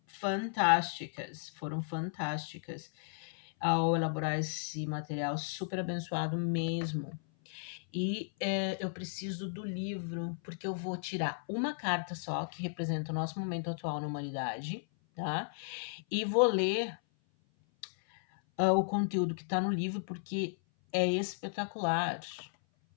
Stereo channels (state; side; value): silent; right; 55 dB below the other